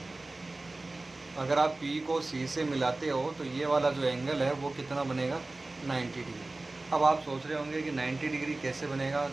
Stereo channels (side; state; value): left; quieter; 3.0 dB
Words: अगर आप पी को सी से मिलाते हो तो ये वाला जो एंगल है वो कितना बनेगा, 90 डिग्री। अब आप सोच रहे होंगे कि 90 डिग्री कैसे बनेगा,